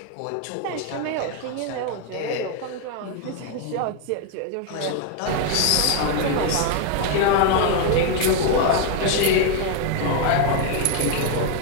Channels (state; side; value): different; both; correlation 0.00